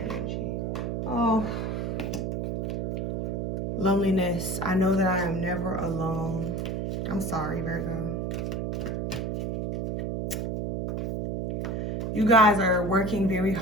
energy? Oh, loneliness. I know that I am never alone. I'm sorry, Virgo. You guys are working very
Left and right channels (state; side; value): noise; right; hum, 1 dB below the sound